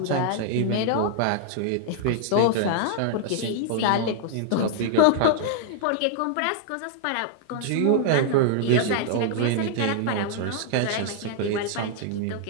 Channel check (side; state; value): both; different; correlation -0.01